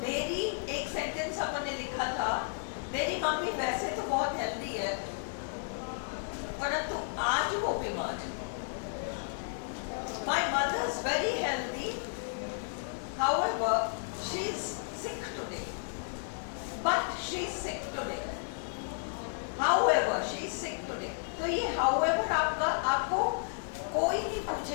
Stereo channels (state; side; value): silent; right; digital silence